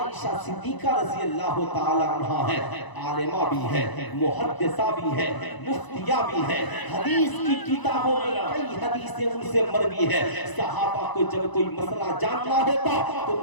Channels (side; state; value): right; late; 1.0 ms